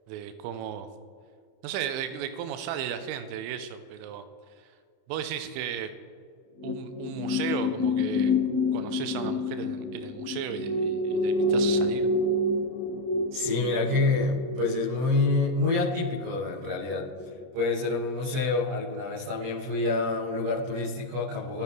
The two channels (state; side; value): late; left; 30 ms